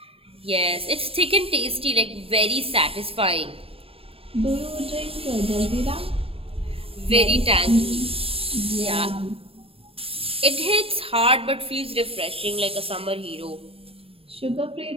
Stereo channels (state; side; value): late; left; 0.27 ms